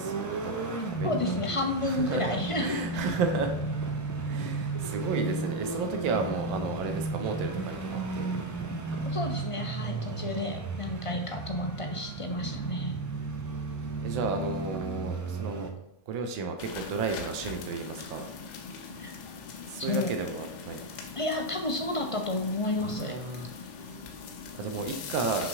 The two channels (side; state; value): right; late; 1.5 ms